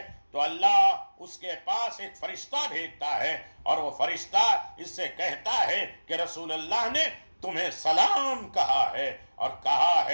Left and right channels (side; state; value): both; inverted; correlation -1.00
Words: تو اللہ اس کے پاس ایک فرشتہ بھیجتا ہے، اور وہ فرشتہ اس سے کہتا ہے کہ رسول اللہ نے تمہیں سلام کہا ہے اور کہا